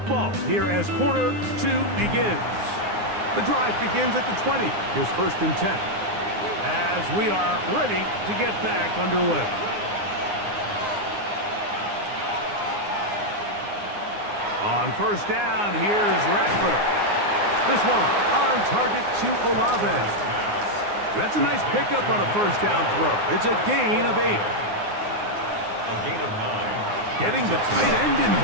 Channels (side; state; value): left; late; 9.7 ms